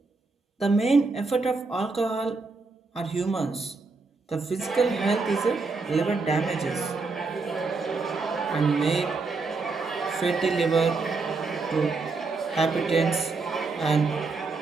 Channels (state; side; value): quieter; left; 4.0 dB